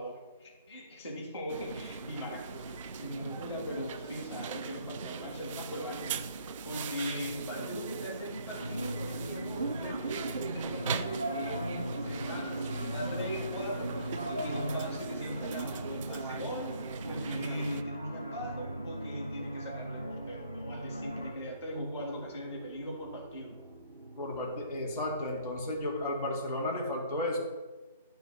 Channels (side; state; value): both; inverted; correlation -0.62